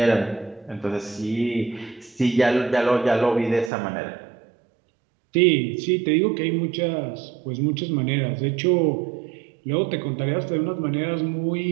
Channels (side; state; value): left; drops out; at 3.7 s